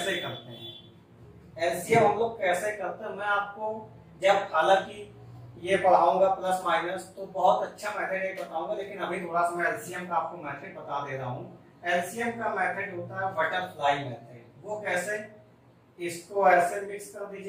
करते हैं, एलसीएम हम लोग कैसे करते हैं, मैं आपको जब हालांकि ये पढ़ाऊंगा प्लस माइनस तो बहुत अच्छा मेथड ये बताऊंगा, लेकिन अभी थोड़ा सा मैं एलसीएम का आपको मेथड बता दे रहा हूँ। एलसीएम का मेथड होता है बटरफ्लाई मेथड। वो कैसे, इसको ऐसे मिक्स कर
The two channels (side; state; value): both; identical; correlation 1.00